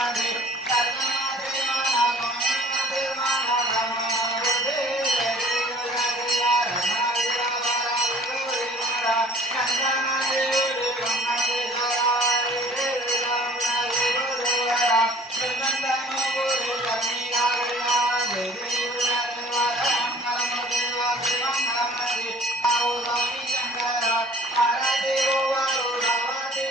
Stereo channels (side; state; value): both; normal; correlation 0.50